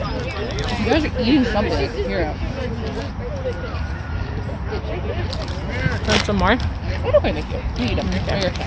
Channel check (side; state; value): both; identical; correlation 1.00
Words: guys are eating something. Here. Want some more? I don't think you. You eat them. They're your